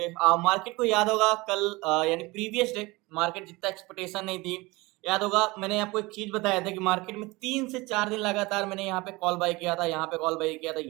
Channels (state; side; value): quieter; left; 22.8 dB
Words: मार्केट को याद होगा कल यानी प्रीवियस डे मार्केट जितना एक्सपेक्टेशन नहीं थी। याद होगा मैंने आपको एक चीज बताया था कि मार्केट में 3 से 4 दिन लगातार मैंने यहाँ पे कॉल बाय किया था, यहाँ पे कॉल बाय किया था,